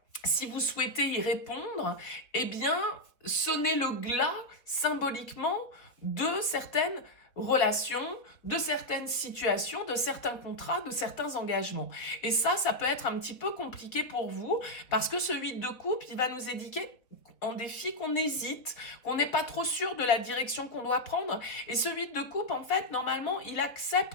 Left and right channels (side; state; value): right; late; 4.1 ms